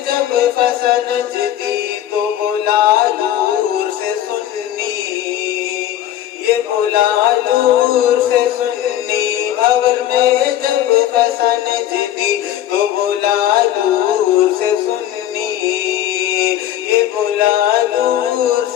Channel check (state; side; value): quieter; right; 12.1 dB